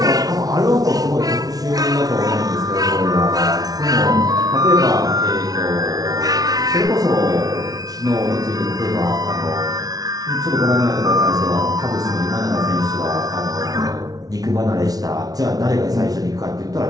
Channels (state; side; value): late; left; 0.18 ms